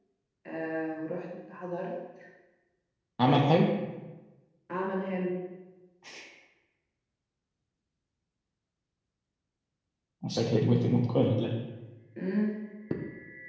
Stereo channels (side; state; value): both; identical; correlation 1.00